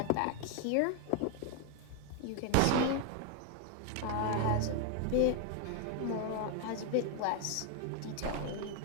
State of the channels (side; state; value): both; different; correlation 0.01